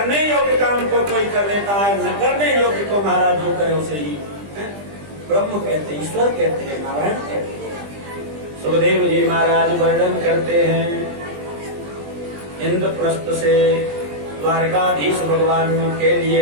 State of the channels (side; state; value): left; late; 20 ms